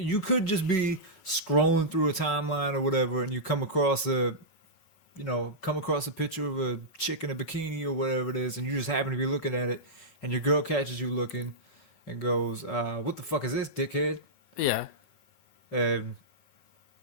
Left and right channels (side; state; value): right; late; 5.4 ms